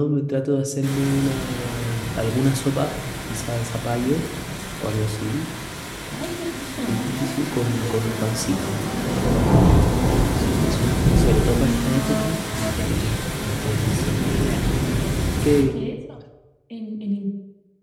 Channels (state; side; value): identical; both; correlation 1.00